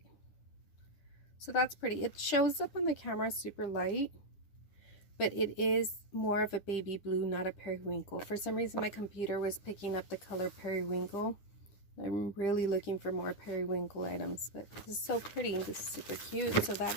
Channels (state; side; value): late; right; 9.8 ms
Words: So that's pretty. It shows up on the camera super light, but it is more of a baby blue, not a periwinkle. For some reason my computer was picking up the color periwinkle. I'm really looking for more periwinkle items, but this is so pretty. This is super cute. So